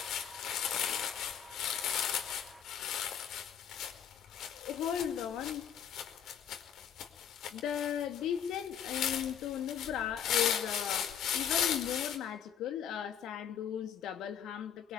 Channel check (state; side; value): quieter; right; 8.7 dB